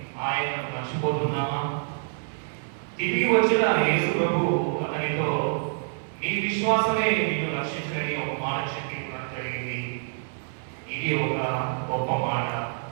ఆయనను మర్చిపోతున్నామా? తిరిగి వచ్చిన యేసు ప్రభు అతనితో, నీ విశ్వాసమే నిన్ను రక్షించడని ఒక మాట చెప్పి ఉండడం జరిగింది. ఇది ఒక గొప్ప మాట.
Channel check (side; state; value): left; silent; 60 dB below the other